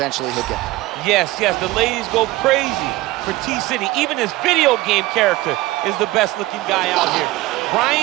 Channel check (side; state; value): left; quieter; 18.6 dB